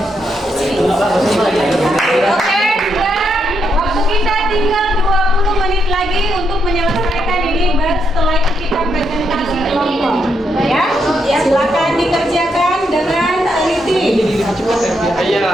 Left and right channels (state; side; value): normal; both; correlation 0.79